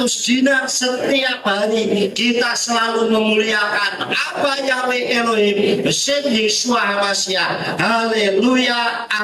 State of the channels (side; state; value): both; identical; correlation 1.00